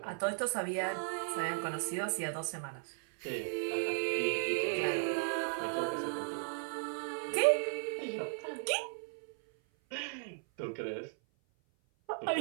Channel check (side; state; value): left; silent; 54 dB below the other